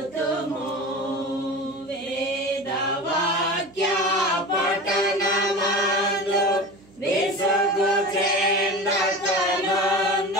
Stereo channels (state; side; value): noise; right; hum, 28 dB below the sound